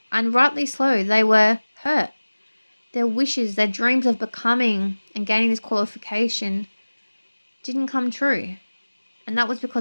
rightly so. They were hurt. Their wishes, their dreams of becoming and gaining this qualification didn't come true. And that was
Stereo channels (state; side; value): inverted; both; correlation -1.00